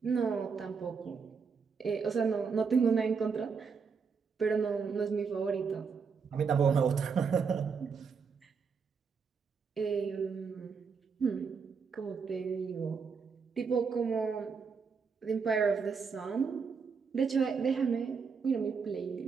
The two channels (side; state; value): left; quieter; 5.6 dB